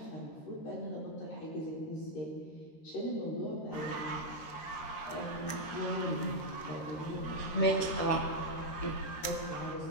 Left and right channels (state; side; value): late; right; 13 ms